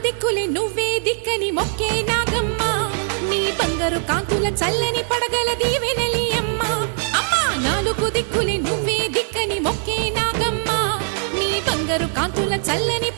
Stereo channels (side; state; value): left; silent; 61 dB below the other